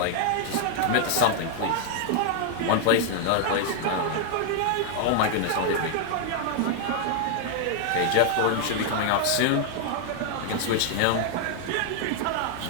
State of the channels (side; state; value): both; different; correlation 0.00